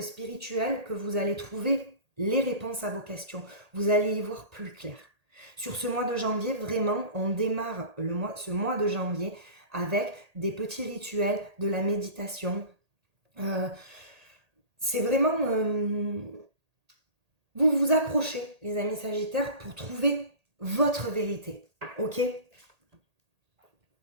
spirituelle que vous allez trouver les réponses à vos questions. Vous allez y voir plus clair. Sur ce mois de janvier, vraiment, on démarre ce mois de janvier avec des petits rituels, de la méditation. C'est vraiment... vous vous accrochez, les amis Sagittaires, pour trouver votre vérité. Ok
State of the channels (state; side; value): late; left; 1.8 ms